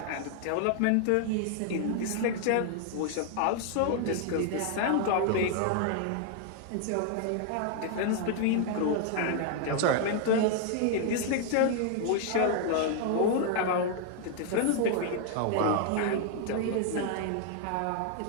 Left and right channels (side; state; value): both; different; correlation 0.00